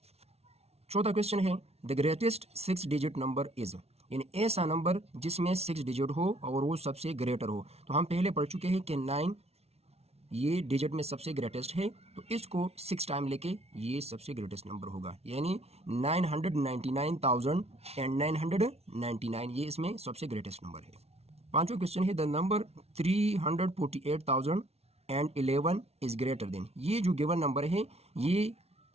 चौथा क्वेश्चन है, the greatest 6 digit number is. यानी ऐसा नंबर जिसमें 6 डिजिट हो और वो सबसे ग्रेटर हो। तो हम पहले पढ़ चुके हैं कि 9 ये डिजिट में सबसे ग्रेटेस्ट है, तो इसको 6 टाइम लेके ये सबसे ग्रेटेस्ट नंबर होगा, यानी 999,999 ये इसमें सबसे ग्रेटेस्ट नंबर है। पांचवा क्वेश्चन है, the number 348,011 is greater than. ये जो गिवन नंबर है ये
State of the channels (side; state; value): left; late; 0.31 ms